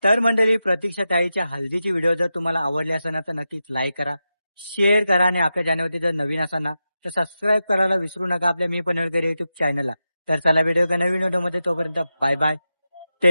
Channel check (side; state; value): both; inverted; correlation -0.90